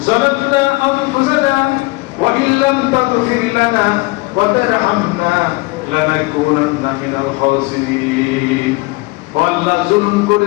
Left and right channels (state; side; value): quieter; right; 24.5 dB